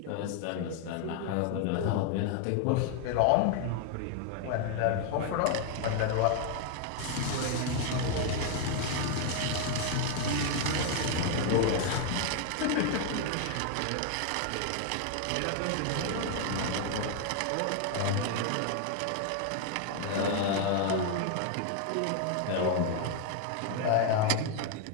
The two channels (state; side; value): different; both; correlation 0.00